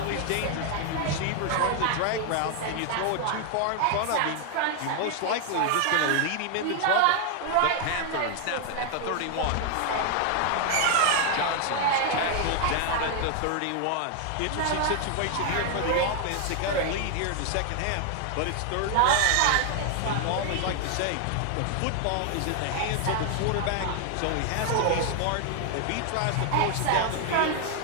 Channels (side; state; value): both; different; correlation 0.00